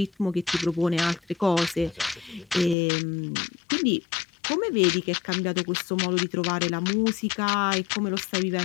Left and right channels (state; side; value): drops out; right; at 2.8 s